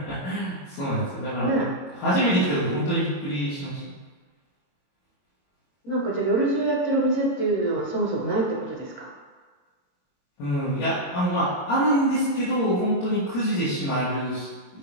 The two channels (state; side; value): late; right; 22 ms